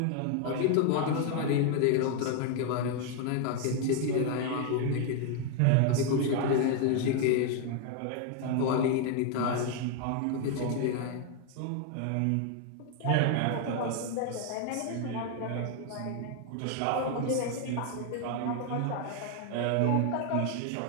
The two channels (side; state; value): both; different; correlation 0.00